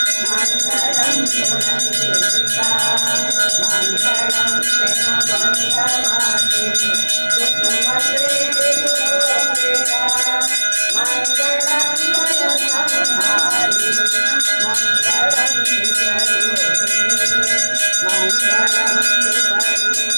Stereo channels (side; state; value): both; inverted; correlation -1.00